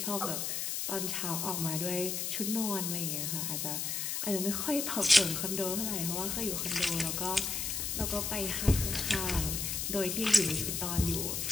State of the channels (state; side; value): noise; left; hiss, 1 dB below the sound